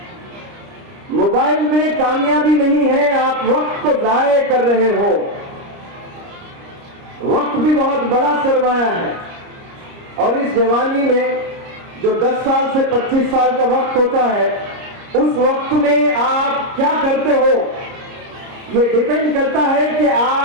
मोबाइल में कामयाबी नहीं है, आप वक्त को जाया कर रहे हो। वक्त भी बहुत बड़ा सरमाया है, और इस जवानी में जो 10 साल से 25 साल का वक्त होता है, उस वक्त में आप क्या करते हो, ये डिपेंड करता है कि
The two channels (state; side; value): late; left; 30 ms